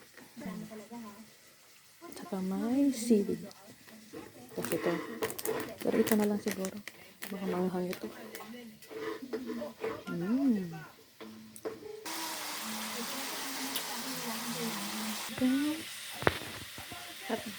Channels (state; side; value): identical; both; correlation 1.00